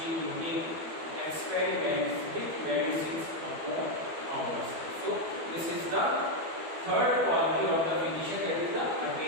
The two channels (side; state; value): left; late; 12 ms